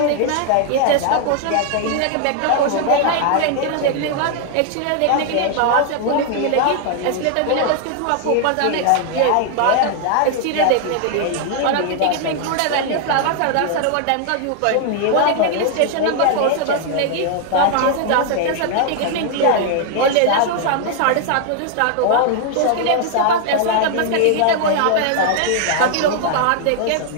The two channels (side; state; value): both; different; correlation 0.00